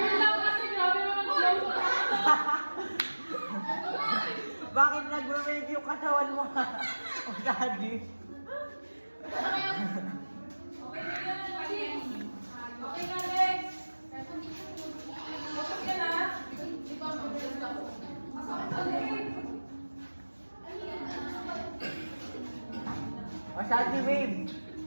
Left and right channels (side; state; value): both; inverted; correlation -1.00